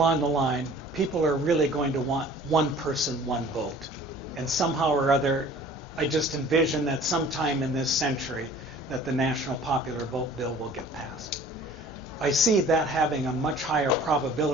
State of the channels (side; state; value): both; normal; correlation 0.48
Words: the line, people are really going to want one person, one vote. And somehow or other, I just envision that sometime in this century that the National Popular Vote Bill will get passed. I see that having a much higher